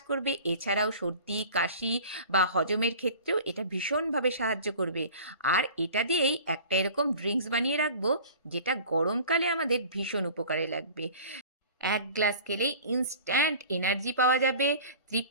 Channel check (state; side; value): inverted; both; correlation -0.42